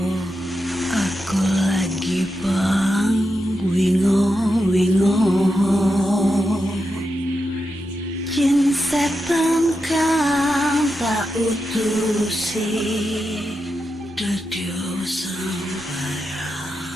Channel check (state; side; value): normal; both; correlation 0.88